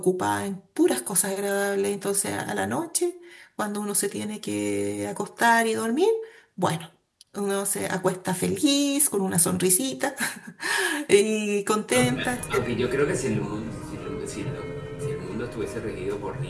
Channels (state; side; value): identical; both; correlation 1.00